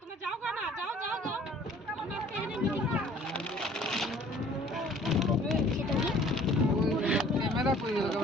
তোমরা যাও না, যাও যাও যাও, আমরা আজকে এখানে মিটিং করব। ক্যামেরা কই গেল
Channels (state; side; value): normal; both; correlation 0.53